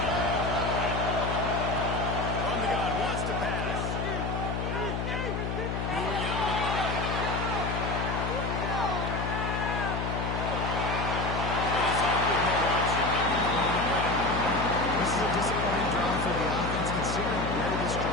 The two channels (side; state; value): left; noise; hum, 2 dB below the sound